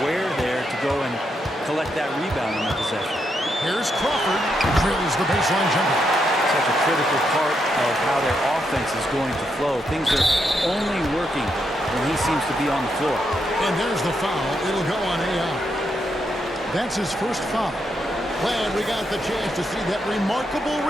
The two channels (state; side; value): normal; both; correlation 0.81